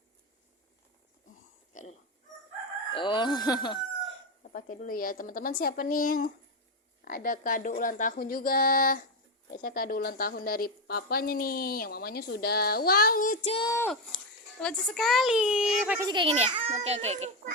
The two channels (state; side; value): normal; both; correlation 0.09